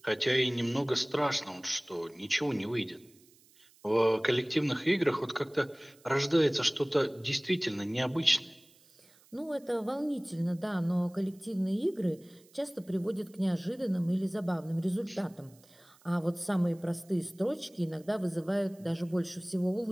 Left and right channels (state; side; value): noise; right; hiss, 28 dB below the sound